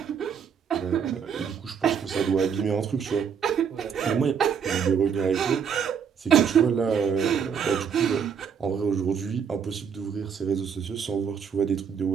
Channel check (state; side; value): quieter; left; 7.1 dB